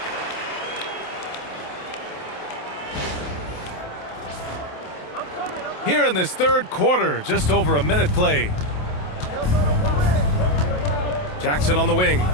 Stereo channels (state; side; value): late; right; 27 ms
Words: Here in this third quarter, just over a minute play. Jackson on the wing.